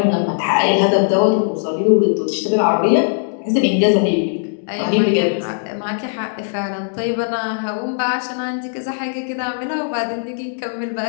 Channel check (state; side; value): silent; right; digital silence